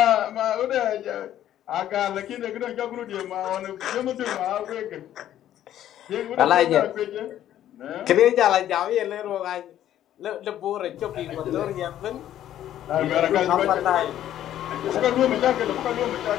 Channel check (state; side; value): quieter; right; 11.8 dB